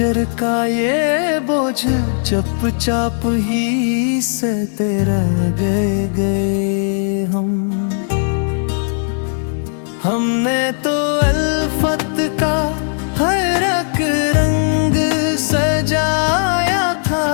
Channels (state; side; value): silent; right; 68 dB below the other